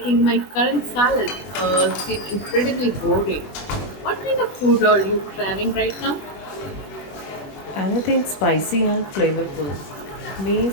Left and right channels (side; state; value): right; late; 20 ms